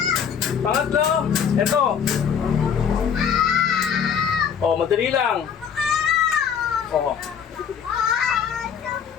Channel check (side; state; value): right; quieter; 7.5 dB